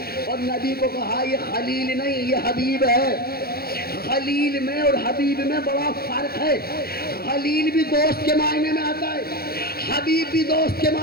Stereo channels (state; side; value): late; right; 0.44 ms